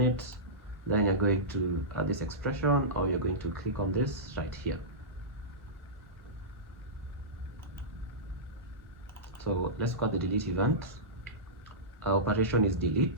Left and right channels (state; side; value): normal; both; correlation -0.16